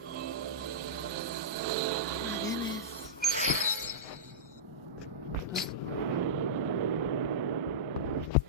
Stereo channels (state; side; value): normal; both; correlation -0.12